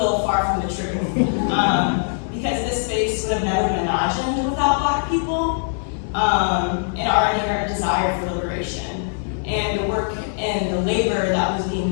far from the truth. Because this space would have never been imagined without Black people and our inherent desire for liberation. And the work and the labor that was being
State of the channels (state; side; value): silent; right; digital silence